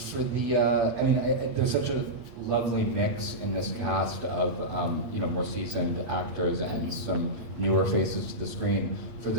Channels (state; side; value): late; left; 8.5 ms